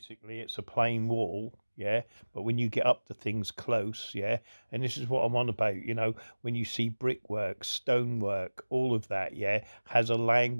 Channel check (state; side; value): inverted; both; correlation -1.00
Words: it's a plain wall, yeah. But when you get up to things close, yeah, and this is what I'm on about, you know, when you see brickwork, stonework, all of that, yeah, has a